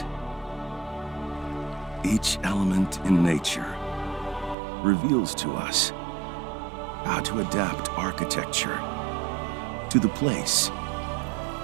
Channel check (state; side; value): drops out; left; at 4.5 s